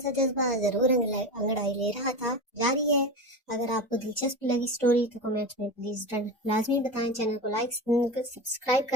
जज्बा जरूर अंगड़ाई ले रहा था। जारी है। अगर आपको दिलचस्प लगी स्टोरी तो कमेंट्स में प्लीज लाजमी बताएं। चैनल को लाइक सब्सक्राइब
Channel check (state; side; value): normal; both; correlation 0.24